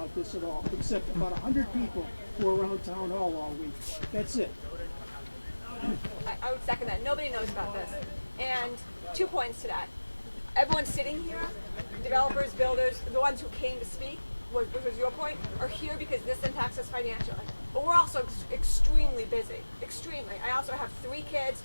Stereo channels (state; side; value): inverted; both; correlation -1.00